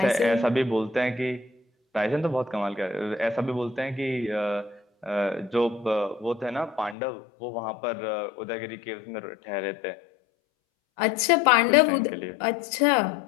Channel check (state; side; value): drops out; right; at 7.0 s